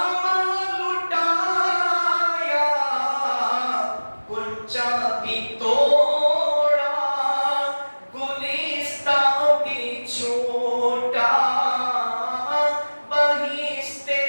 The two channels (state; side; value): inverted; both; correlation -1.00